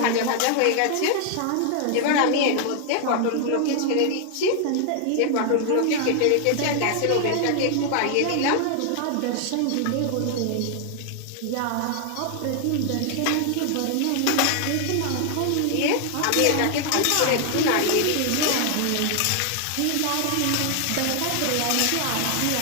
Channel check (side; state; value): both; different; correlation 0.00